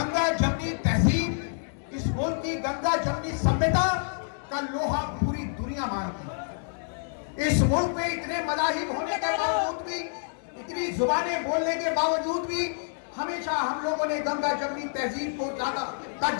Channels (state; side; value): silent; right; 60 dB below the other